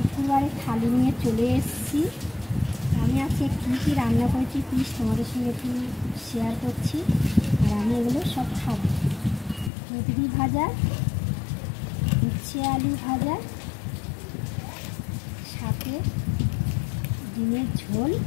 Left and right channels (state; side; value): drops out; right; at 9.7 s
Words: থালি নিয়ে চলে এসেছি। আমি আজকে কী কী রান্না করেছি প্লিজ তোমাদের সঙ্গে একটু শেয়ার করছি। আর আমি এগুলো সব খাবো। কুঁদরি ভাজা, উচ্ছে আলু ভাজা, সাথে ডিমের ঝোল,